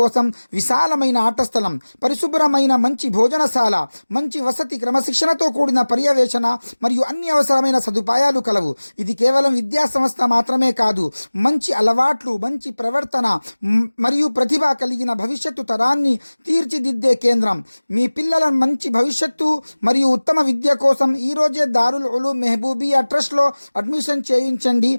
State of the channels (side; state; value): both; inverted; correlation -1.00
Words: విశాలమైన ఆట స్థలం, పరిశుభ్రమైన మంచి భోజనశాల, మంచి వసతి, క్రమశిక్షణతో కూడిన పర్యవేక్షణ మరియు అన్ని అవసరమైన సదుపాయాలు కలవు. ఇది కేవలం విద్యా సంస్థ మాత్రమే కాదు, మంచి అలవాట్లు, మంచి ప్రవర్తన మరియు ప్రతిభ కలిగిన భవిష్యత్తు తరాన్ని తీర్చిదిద్దే కేంద్రం. మీ పిల్లల మంచి భవిష్యత్తు మరియు ఉత్తమ విద్య కోసం ఈరోజే దారుల్ ఉలూమ్ మెహబూబియా ట్రస్ట్లో అడ్మిషన్ చేయించండి.